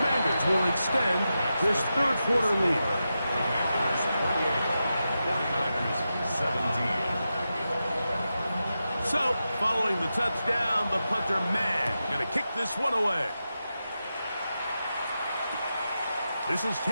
will extend this third quarter lead. 17. So, following the touchdown, the punter, man, going to kick this one away. This is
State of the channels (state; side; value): inverted; both; correlation -0.90